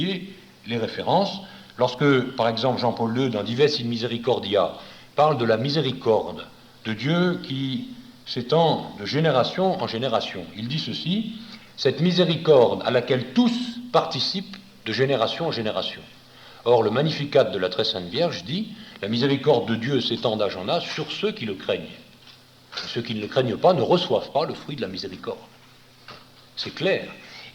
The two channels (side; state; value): both; identical; correlation 1.00